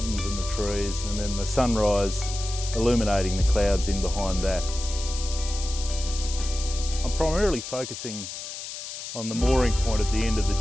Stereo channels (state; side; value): noise; left; hiss, 9 dB below the sound